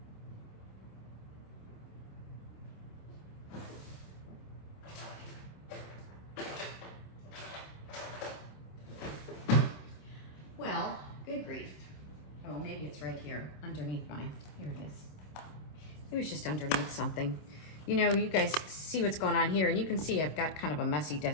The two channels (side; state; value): right; late; 26 ms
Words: Well, good grief. Oh, maybe it's right here underneath mine. Here it is. It was just underneath something. You know, you guys see what's going on here, and you can see I've got kind of a messy